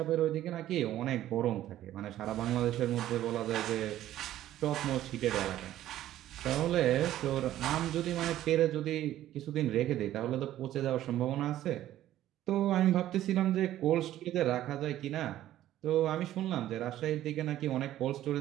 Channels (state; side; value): quieter; left; 13.2 dB